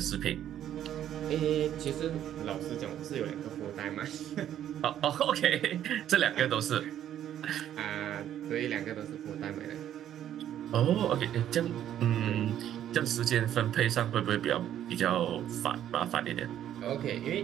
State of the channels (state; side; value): quieter; left; 10.9 dB